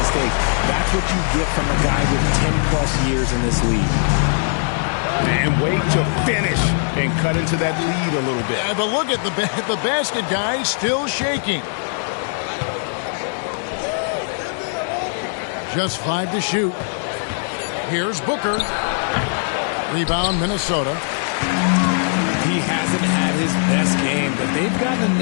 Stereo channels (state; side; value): silent; right; digital silence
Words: That's what you get from a guy with 10-plus years in this league. And wait to finish and cut into that lead a little bit. Yeah, but look at the basket guy still shaking. Just 5 to shoot. Here's Booker. Rebound, Minnesota. He hasn't had his best game, but they've gotten